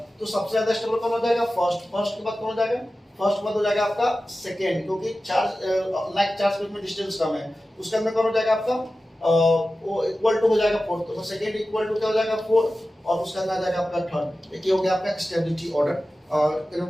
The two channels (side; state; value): both; normal; correlation 0.94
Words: तो सबसे ज्यादा स्टेबल कौन हो जाएगा? फर्स्ट। फर्स्ट के बाद कौन हो जाएगा? फर्स्ट के बाद हो जाएगा आपका सेकंड, क्योंकि चार्ज लाइक चार्ज के बीच में डिस्टेंस कम है। उसके अंदर कौन हो जाएगा आपका? वो इक्वल टू हो जाएगा फोर्थ। तो सेकंड इक्वल टू क्या हो जाएगा? फोर्थ। और उसका अंदर आ जाएगा आपका थर्ड। ये हो गया आपका स्टेबिलिटी ऑर्डर,